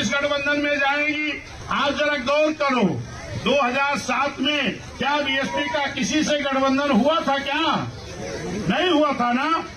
गठबंधन में जाएंगी। आज जरा गौर करो, 2007 में क्या BSP का किसी से गठबंधन हुआ था? क्या नहीं हुआ था ना?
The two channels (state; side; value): identical; both; correlation 1.00